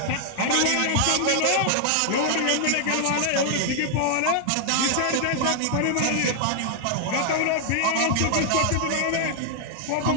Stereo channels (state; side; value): different; both; correlation 0.00